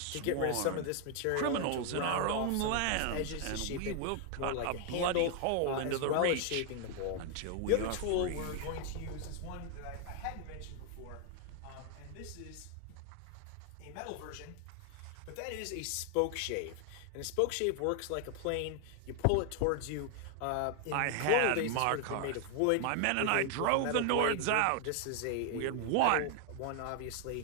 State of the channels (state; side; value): different; both; correlation 0.00